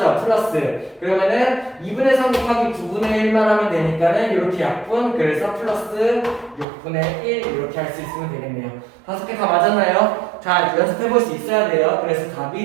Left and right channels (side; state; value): left; drops out; at 6.7 s